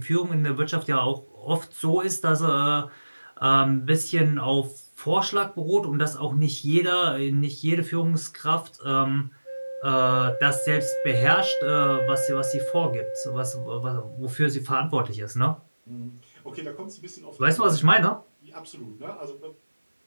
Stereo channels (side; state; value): both; inverted; correlation -1.00